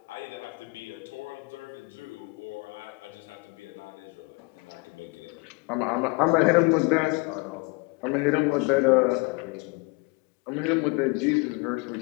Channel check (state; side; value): quieter; right; 28.3 dB